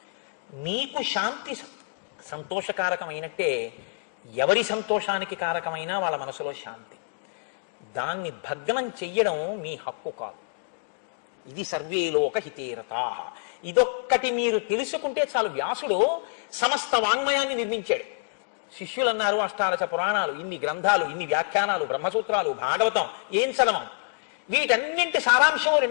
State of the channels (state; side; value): silent; right; digital silence